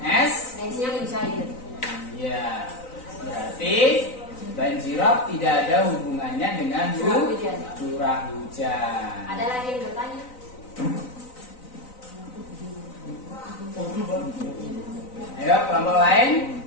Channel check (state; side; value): late; right; 3.9 ms